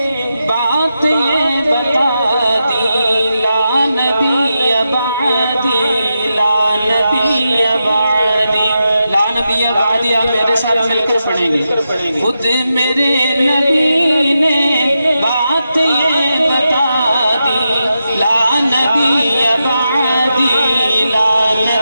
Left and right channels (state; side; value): inverted; both; correlation -0.88